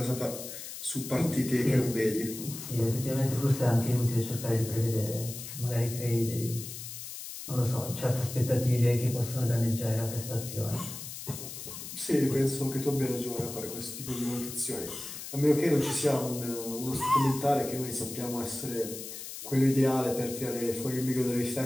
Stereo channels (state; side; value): noise; left; hiss, 10 dB below the sound